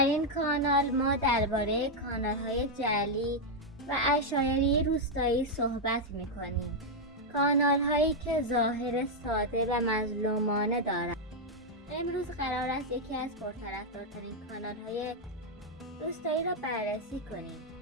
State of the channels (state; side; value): normal; both; correlation -0.01